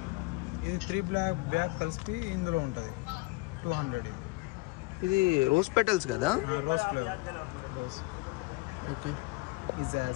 ఇది 3 బ్యాగ్ కలిపి ఇందులో ఉంటుంది 200 ఇది రోజ్ పెటల్స్ కదా రోజ్ ఫ్లేవర్ రోజ్ ఓకే ఈ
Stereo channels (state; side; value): quieter; right; 23.5 dB